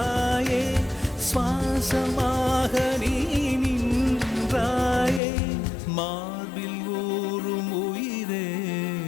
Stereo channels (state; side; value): drops out; right; at 5.2 s